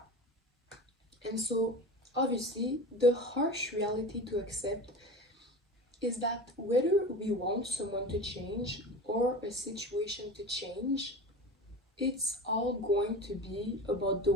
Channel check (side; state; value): both; normal; correlation 0.32